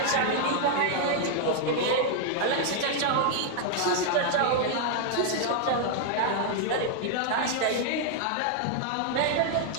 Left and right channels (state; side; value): different; both; correlation 0.00